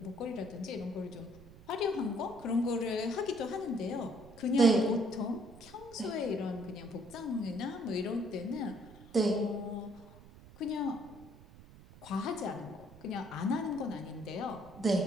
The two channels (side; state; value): right; noise; rumble, 20 dB below the sound